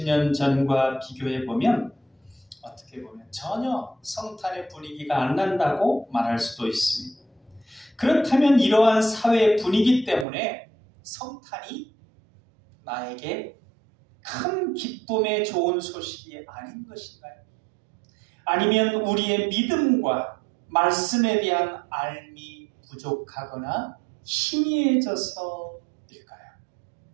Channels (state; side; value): drops out; left; at 10.2 s